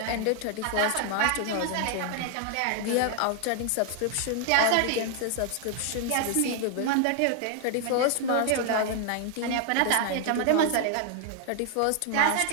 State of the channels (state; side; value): different; both; correlation 0.00